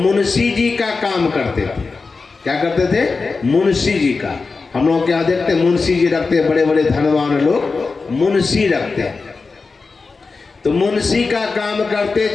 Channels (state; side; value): quieter; right; 4.3 dB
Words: जी का काम करते थे। क्या करते थे? मुंशी जी का। हम लोग क्या देखते हैं, मुंशी जी रखते हैं, बड़े बड़े धनवान लोग मुंशी रखते हैं। तो मुंशी का काम करते